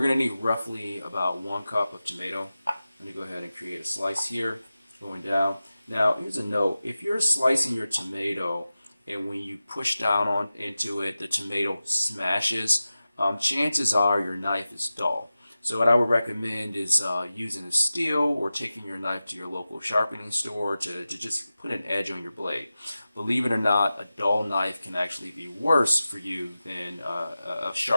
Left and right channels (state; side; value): inverted; both; correlation -0.95